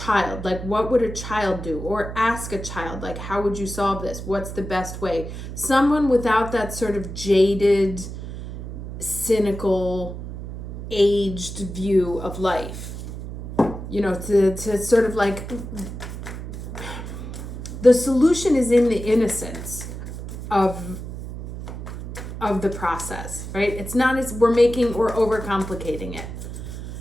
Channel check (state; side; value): noise; right; hum, 9 dB below the sound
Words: Like, what would a child do? Or ask a child, like, how would you solve this? What's the best way? Someone without that sort of jaded, cynical, aged view of life. You know, to sort of like, the solution is in the innocence of the process, right? It's not as we're overcomplicating it.